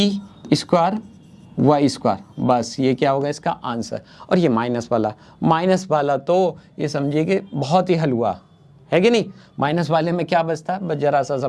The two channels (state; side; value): identical; both; correlation 1.00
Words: स्क्वायर y स्क्वायर, बस ये क्या होगा इसका आंसर। और ये माइनस वाला तो ये समझिए कि बहुत ही हलवा है कि नहीं। माइनस वाले में क्या बचता है, बस जरा सा